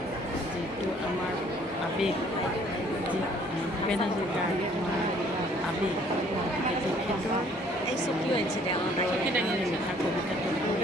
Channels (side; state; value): both; normal; correlation 0.59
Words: যিটো আমাৰ আৱেগ, যি ভূপেন হাজৰিকাৰ আমাৰ আৱেগ, গতিকে তেখেতৰ এই চকীও আনিছে দে চকী দাঙি আনিছে তাৰ কবিতাটো